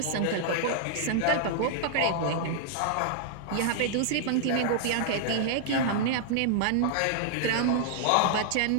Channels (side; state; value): both; different; correlation -0.01